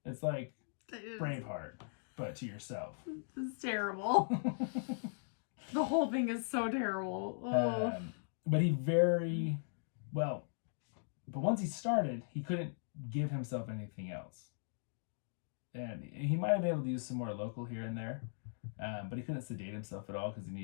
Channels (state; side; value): silent; right; digital silence